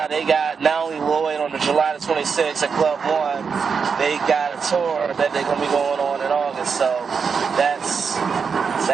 they got not only Lloyd on the July the 26th at Club One, they got a tour that they're gonna be going on in August. So that's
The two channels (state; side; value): quieter; left; 5.8 dB